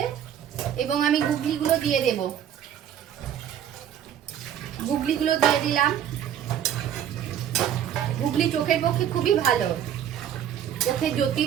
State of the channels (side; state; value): left; quieter; 9.8 dB